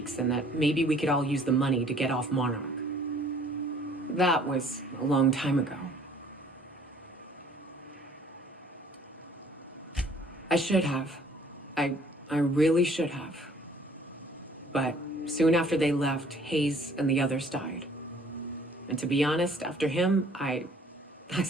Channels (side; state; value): both; normal; correlation 0.56